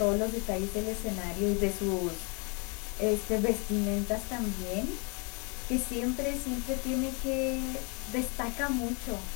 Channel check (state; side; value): quieter; right; 33.7 dB